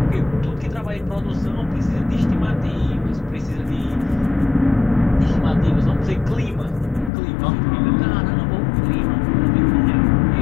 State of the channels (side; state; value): right; drops out; at 7.1 s